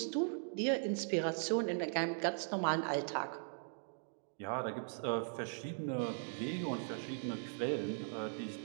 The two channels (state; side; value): silent; left; digital silence